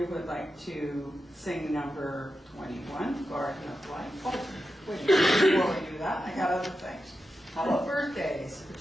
would like to sing number 21, Garden of Life. Oh, wait, before we do that, I got other things. How about birthdays?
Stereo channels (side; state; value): both; normal; correlation 0.89